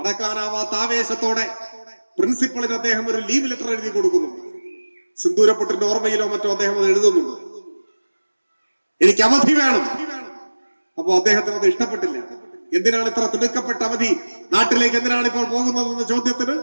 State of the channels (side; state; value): both; inverted; correlation -1.00